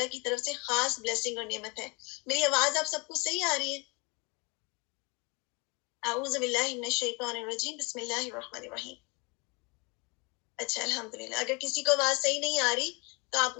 کی طرف سے خاص بلیسنگ اور نعمت ہے. میری آواز آپ سب کو صحیح آ رہی ہے؟ اعوذ باللہ من الشیطان الرجیم. بسم اللہ الرحمن الرحیم. اچھا الحمدللہ. اگر کسی کو آواز صحیح نہیں آ رہی تو آپ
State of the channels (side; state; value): right; quieter; 29.6 dB